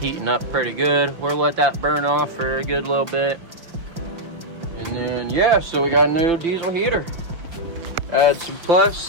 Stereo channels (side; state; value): left; late; 5.7 ms